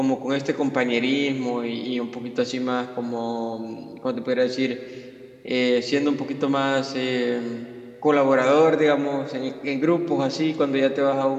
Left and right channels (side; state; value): both; identical; correlation 1.00